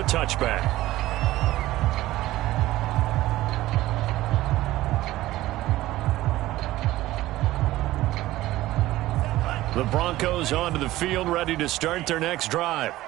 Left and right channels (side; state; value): left; quieter; 16.4 dB